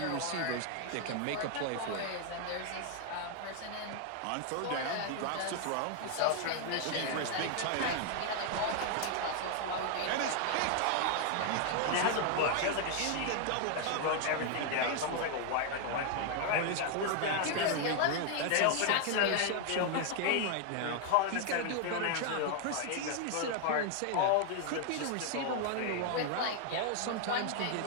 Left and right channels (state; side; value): different; both; correlation 0.00